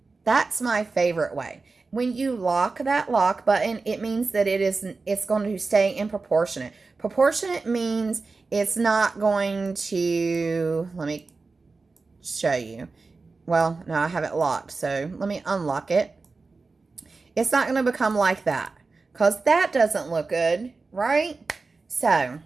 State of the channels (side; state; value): left; quieter; 4.0 dB